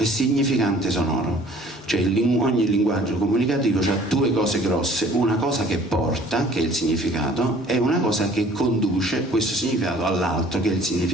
significante sonoro. Cioè ogni linguaggio comunicativo ha 2 cose grosse: una cosa che porta, che è il significato, e una cosa che conduce questo significato all'altro, che è il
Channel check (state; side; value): normal; both; correlation 0.53